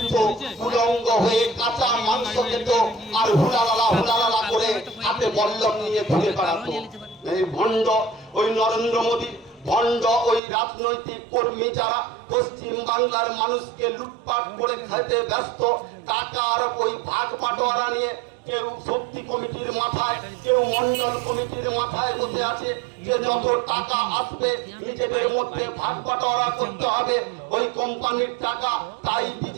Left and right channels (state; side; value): drops out; left; at 10.4 s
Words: উলঙ্গ হয়ে কাঁচা মাংস খেত আর হুলালালা করে হাতে বল্লম নিয়ে ঘুরে বেড়াতো। এই ভণ্ড ওই নরেন্দ্র মোদী, ভণ্ড ওই রাজনৈতিক কর্মী যারা পশ্চিম বাংলার মানুষকে লুটপাট করে খেতে ব্যস্ত, টাকার ওই ভাগ বাটোয়ারা নিয়ে কেউ শক্তি কমিটির মাথায়, কেউ মন্ডল কমিটির মাথায় বসে আছে যে যত টাকা আসবে নিজেদের মধ্যে ভাগ বাটোয়ারা করতে হবে, ওই কোম্পানির টাকা তাই